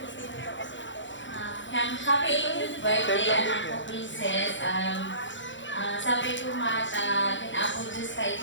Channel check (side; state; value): right; late; 0.54 ms